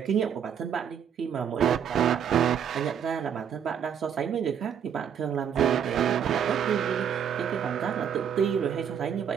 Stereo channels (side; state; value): left; quieter; 8.2 dB